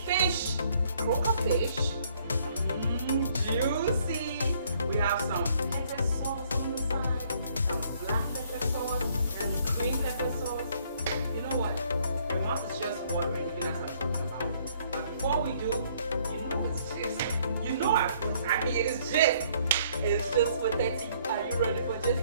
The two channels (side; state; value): both; inverted; correlation -0.64